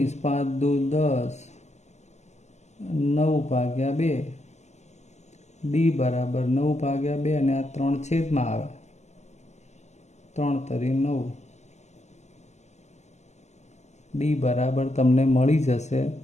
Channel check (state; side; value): late; right; 0.33 ms